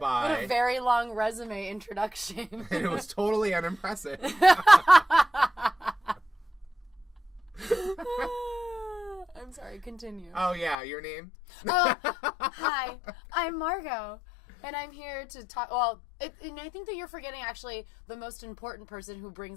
What a very long resume introduction. And it was totally unimpressive. I'm sorry, continue. Oh, yeah, your name? Hi, I'm Margot, and I'm here to talk, and I think that you're forgetting, actually, the most important person who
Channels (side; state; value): right; drops out; at 10.8 s